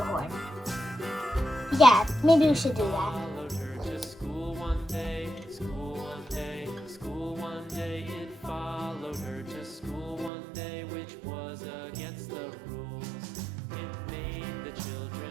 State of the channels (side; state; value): left; drops out; at 10.3 s